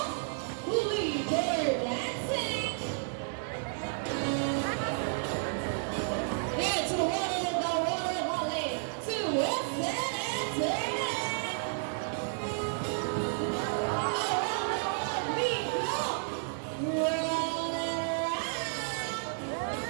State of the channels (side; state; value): left; silent; digital silence